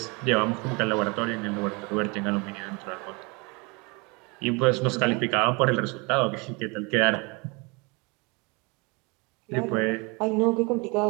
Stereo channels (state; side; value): quieter; left; 28.9 dB